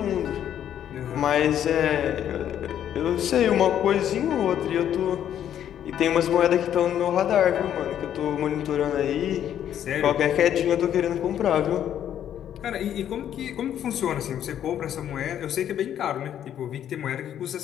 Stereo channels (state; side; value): quieter; right; 10.2 dB